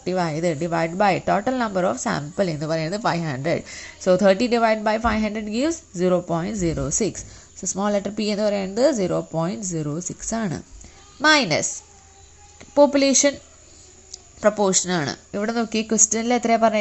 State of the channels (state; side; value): identical; both; correlation 1.00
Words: ആയത്. Divide by total number of sample എന്ന് പറയുന്നത് 500. So 30 divide by 500 gives 0.06. So small letter P എന്ന് പറയുന്നത് 0.06 ആണ്. മൈനസ് പോപ്പുലേഷൻ പ്രൊപ്പോർഷൻ ആണ്. ഇവിടെ നോക്കി ക്വസ്റ്റ്യനിൽ എത്രയാണ്